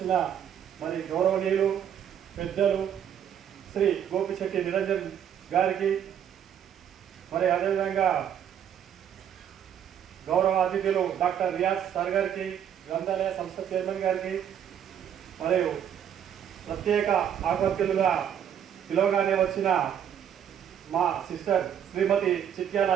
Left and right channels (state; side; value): quieter; left; 9.2 dB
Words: మరి గౌరవనీయులు పెద్దలు శ్రీ గోపిశెట్టి నిరంజన్ గారికి, మరి అదేవిధంగా గౌరవ అతిథులు డాక్టర్ రియాజ్ సార్ గారికి, గ్రంథాలయ సంస్థ చైర్మన్ గారికి, మరియు ప్రత్యేక ఆకర్షులుగా పిలవగానే వచ్చిన మా సిస్టర్ శ్రీమతి చిట్యాల